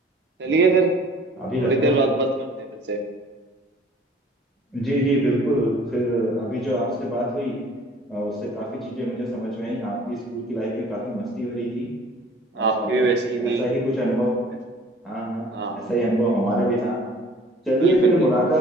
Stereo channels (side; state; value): both; normal; correlation 0.51